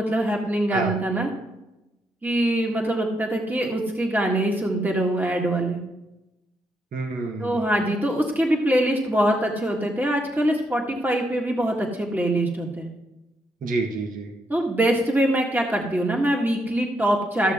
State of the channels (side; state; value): both; normal; correlation 0.78